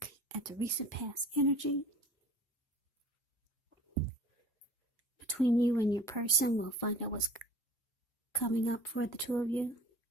at the recent past energy between you and your person. We'll find out what's coming up for the two of you.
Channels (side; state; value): both; normal; correlation 0.45